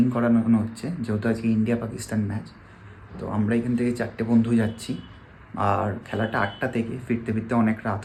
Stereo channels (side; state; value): both; identical; correlation 1.00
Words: করানো হচ্ছে, যেহেতু আজকে ইন্ডিয়া পাকিস্তান ম্যাচ। তো আমরা এখান থেকে 4টে বন্ধু যাচ্ছি। আর খেলাটা 8টা থেকে, ফিরতে ফিরতে অনেক রাত